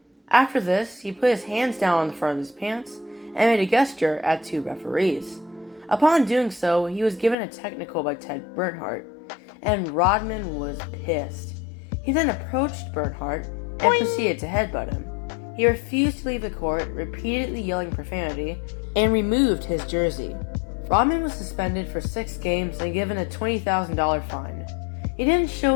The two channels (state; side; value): drops out; right; at 7.4 s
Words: After this, he put his hands down on the front of his pants and made a gesture at two referees. Upon doing so, he was given a technical by Ted Bernhardt, and Rodman was pissed. He then approached Bernhardt and proceeded to headbutt him. He refused to leave the court, repeatedly yelling profanity, and removed his jersey. Rodman was suspended for 6 games and given a $20,000 fine. He didn't